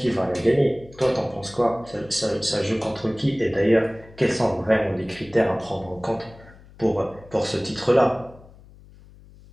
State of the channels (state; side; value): noise; left; hum, 23 dB below the sound